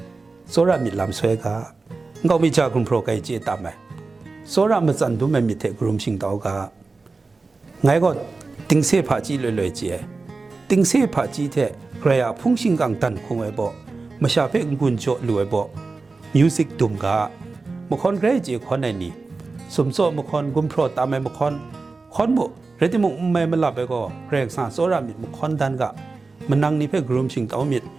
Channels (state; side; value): quieter; left; 3.9 dB